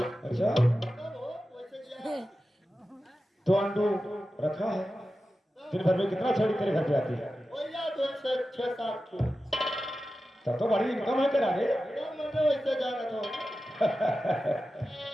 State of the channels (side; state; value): both; normal; correlation 0.93